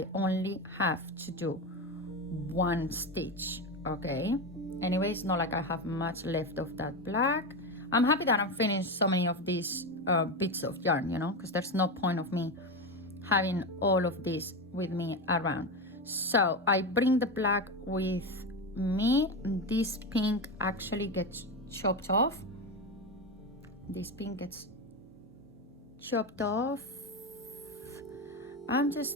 only have to do one stitch, okay? Anyway, it's not like I have much left of that black. I'm happy that I'm finished so many of these bits of yarn, you know, because there's no point of me having all of this with me around. So I bring the black with me. This pink actually gets chopped off. This pink gets chopped off. I'm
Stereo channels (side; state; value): right; noise; hum, 30 dB below the sound